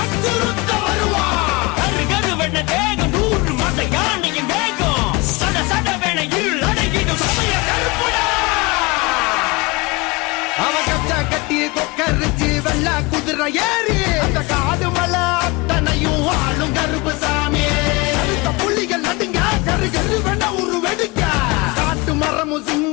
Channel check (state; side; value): quieter; right; 24.9 dB